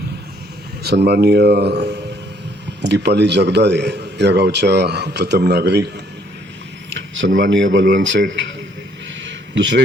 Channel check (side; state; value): both; normal; correlation 0.65